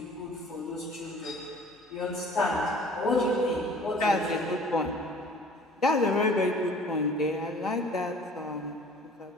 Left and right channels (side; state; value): both; normal; correlation 0.49